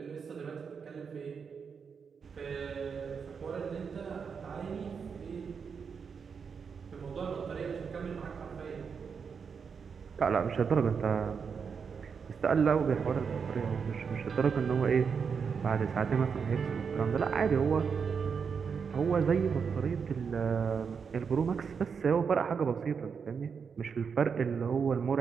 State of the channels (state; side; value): quieter; left; 6.1 dB